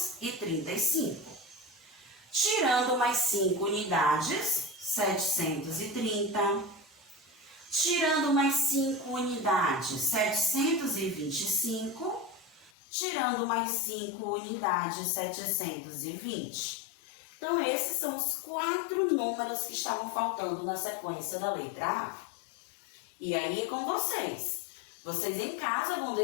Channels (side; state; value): right; drops out; at 12.7 s